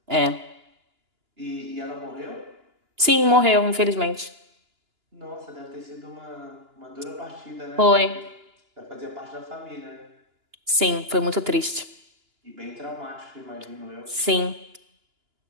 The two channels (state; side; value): late; left; 2.9 ms